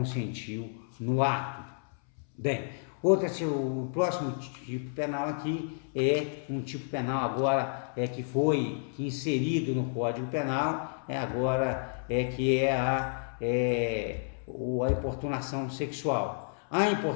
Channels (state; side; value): silent; right; 57 dB below the other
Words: no ato. Bem, o próximo tipo penal aqui é um tipo penal agora que foi inserido no Código Penal, que é a importunação sexual. A